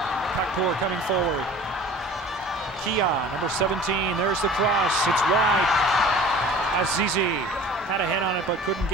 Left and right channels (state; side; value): normal; both; correlation 0.44